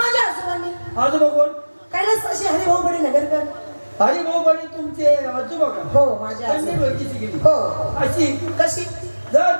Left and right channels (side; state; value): both; inverted; correlation -1.00